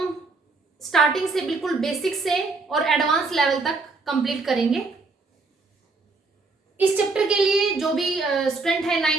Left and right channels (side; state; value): left; quieter; 3.8 dB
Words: स्टार्टिंग से बिल्कुल बेसिक से और एडवांस लेवल तक कंप्लीट करेंगे। इस चैप्टर के लिए जो भी स्टूडेंट है